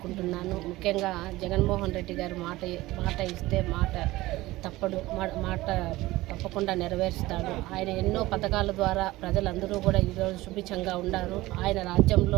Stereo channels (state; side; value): quieter; left; 18.4 dB